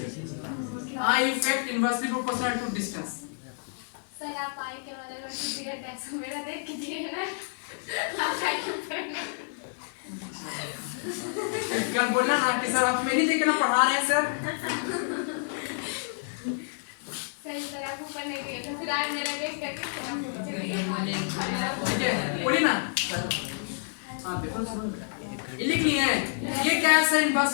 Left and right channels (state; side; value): silent; right; digital silence